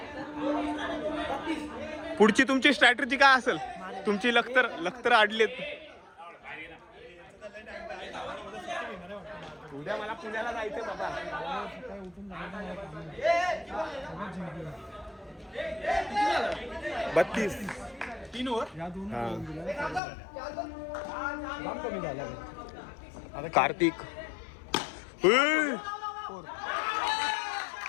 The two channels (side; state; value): right; drops out; at 20.0 s